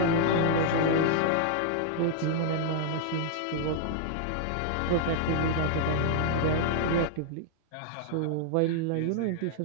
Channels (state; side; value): different; both; correlation -0.01